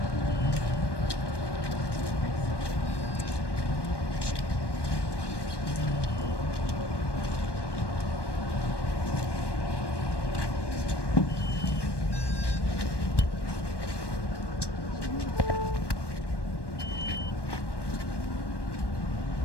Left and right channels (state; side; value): late; right; 1.1 ms